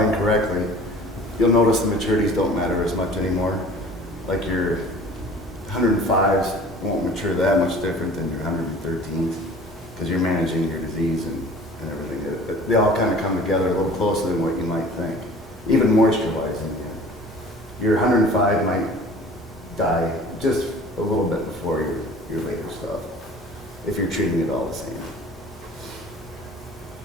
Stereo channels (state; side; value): normal; both; correlation 0.45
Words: you'll notice the maturities don't matter as much anymore. Like your 105s won't mature that much different than your 113s because you're managing your disease and everything. They all kind of come together a little closer than what you might think, even moisture-wise in the end. Your 105 might die just a little bit before your later stuff, if you're treating it all the same.